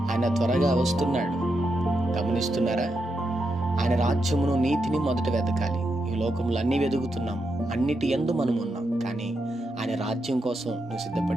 ఆయన త్వరగా వస్తున్నాడు. గమనిస్తున్నారా? ఆయన రాజ్యమును నీతిని మొదట వెతకాలి. ఈ లోకంలో అన్నీ వెతుకుతున్నాము, అన్నిటి యందు మనం ఉన్నాం. కానీ ఆయన రాజ్యం కోసం నువ్వు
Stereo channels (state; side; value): normal; both; correlation 0.84